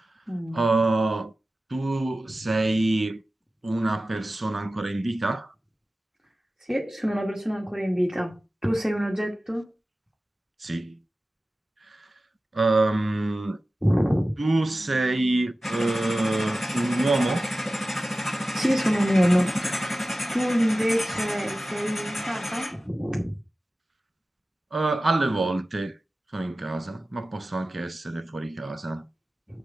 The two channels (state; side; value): normal; both; correlation 0.96